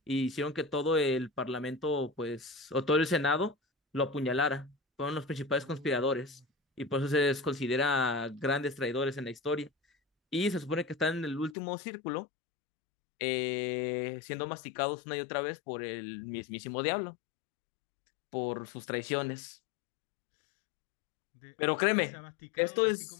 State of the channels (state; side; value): drops out; right; at 11.6 s